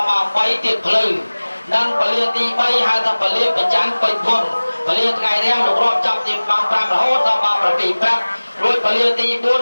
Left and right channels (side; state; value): both; inverted; correlation -1.00